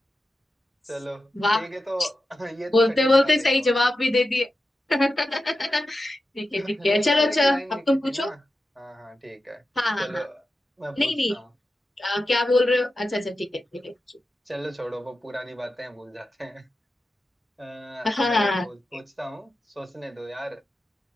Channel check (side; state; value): both; normal; correlation 0.91